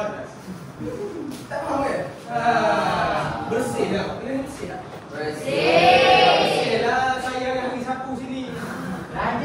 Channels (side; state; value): both; identical; correlation 1.00